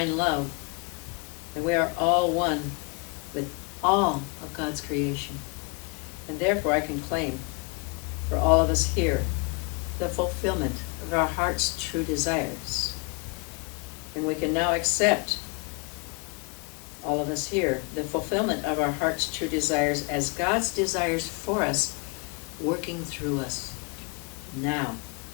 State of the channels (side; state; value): right; quieter; 31.6 dB